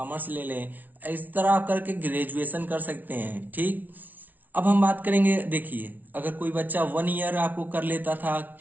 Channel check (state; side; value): late; left; 0.080 ms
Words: ले लें, इस तरह आप करके ग्रेजुएशन कर सकते हैं। ठीक, अब हम बात करेंगे, देखिए अगर कोई बच्चा 1 ईयर आपको कर लेता था,